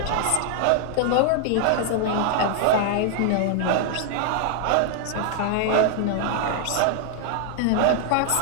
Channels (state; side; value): different; both; correlation 0.00